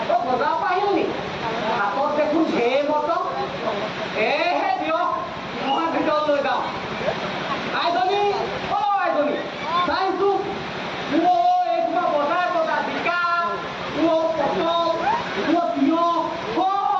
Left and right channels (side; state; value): both; identical; correlation 1.00